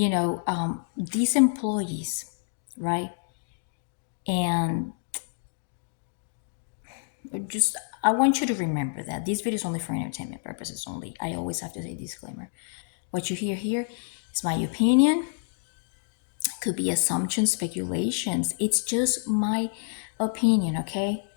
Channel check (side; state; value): right; silent; digital silence